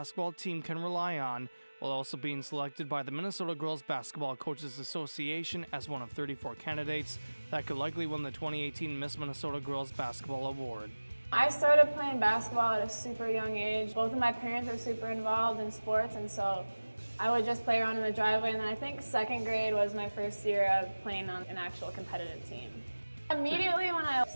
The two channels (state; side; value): inverted; both; correlation -1.00